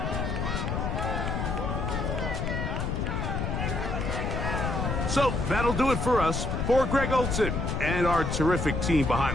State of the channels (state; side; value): noise; left; rumble, 1 dB below the sound